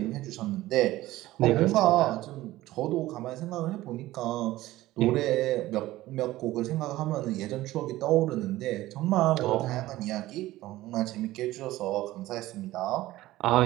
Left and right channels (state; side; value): quieter; left; 16.5 dB